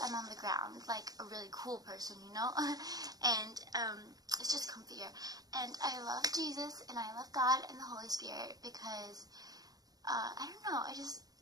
I'm on the ground, like a really cool person, you know, and it's just comfier. And I love Jesus and I love God and the Holy Spirit because, I don't know, I just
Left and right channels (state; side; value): late; left; 0.18 ms